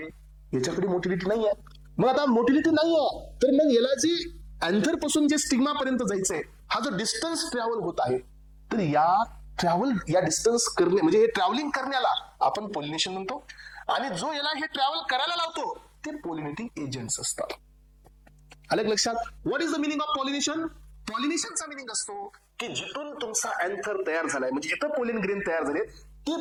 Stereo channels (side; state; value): both; identical; correlation 1.00